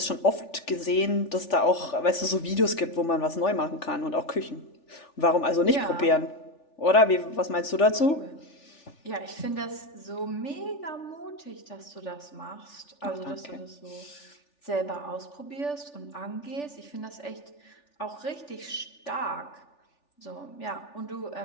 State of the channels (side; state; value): right; late; 3.4 ms